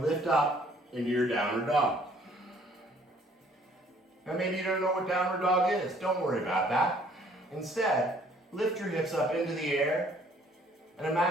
lift up into your downward dog. Now maybe you don't know what downward dog is. Don't worry about that. Instead, lift your hips up into the air, and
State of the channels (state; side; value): normal; both; correlation 0.60